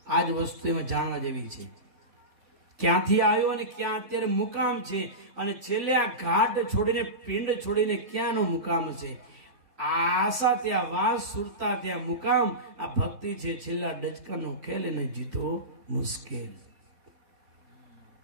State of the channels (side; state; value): left; late; 3.4 ms